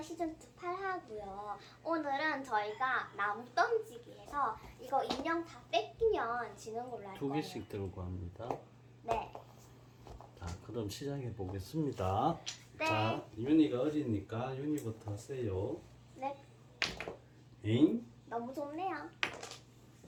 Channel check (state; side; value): identical; both; correlation 1.00